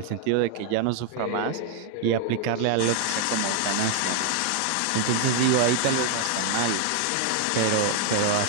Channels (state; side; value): different; both; correlation 0.00